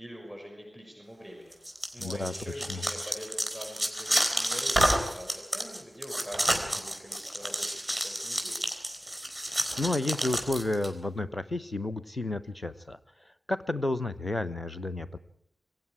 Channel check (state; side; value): normal; both; correlation 0.93